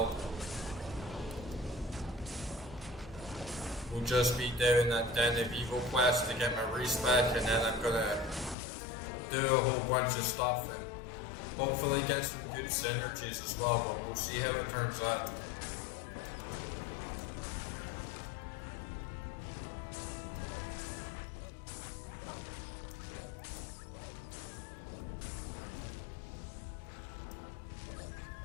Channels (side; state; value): right; drops out; at 8.6 s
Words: will just be doing that Den of Evil quest to get my respec, and then I'm gonna do a whole bunch of stuff and hopefully get some good synergies as well, but we'll see how it turns out.